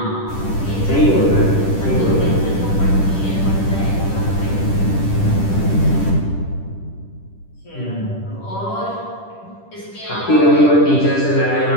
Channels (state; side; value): late; right; 10 ms